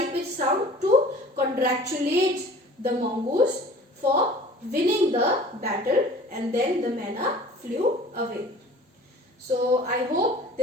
to congratulate the mongoose for winning the battle, and then the manna flew away. So I hope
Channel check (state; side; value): normal; both; correlation 0.46